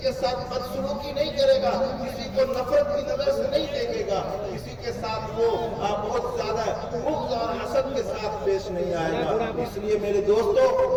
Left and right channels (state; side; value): identical; both; correlation 1.00